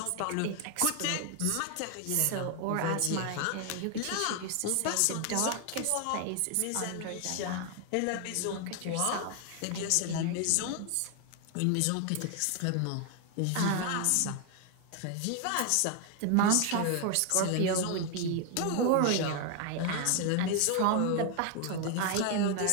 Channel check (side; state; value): both; different; correlation 0.00